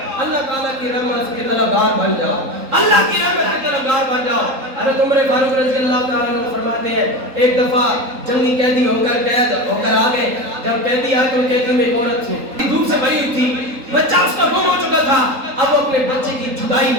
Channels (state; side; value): late; left; 3.8 ms